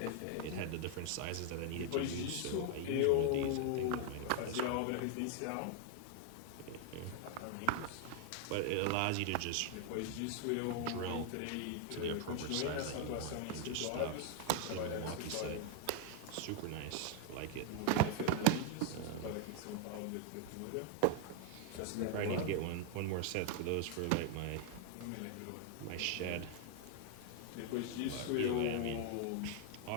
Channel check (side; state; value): both; different; correlation 0.00